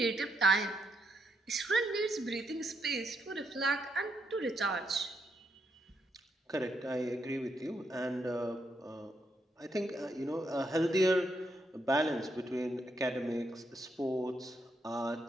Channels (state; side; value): normal; both; correlation 0.79